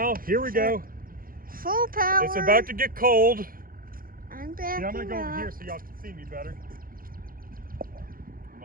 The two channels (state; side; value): late; left; 0.42 ms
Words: here we go. Full power. It's about to get cold. I'm backing I'm gonna go over up. here so y'all can see me better. I'm